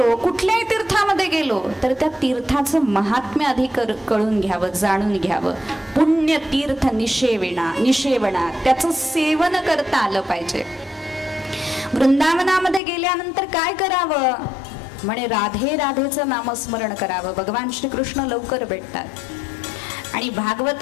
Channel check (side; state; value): right; drops out; at 12.8 s